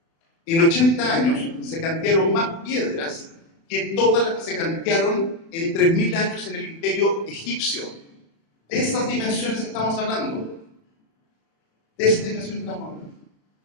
En 80 años se cantearon más piedras que todas las que se cantearon en 3000 años en el imperio egipcio. De esas dimensiones estamos hablando. De esas dimensiones estamos hablando.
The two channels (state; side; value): late; right; 36 ms